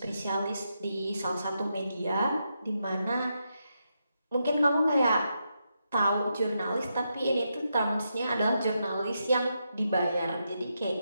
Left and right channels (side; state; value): both; inverted; correlation -0.84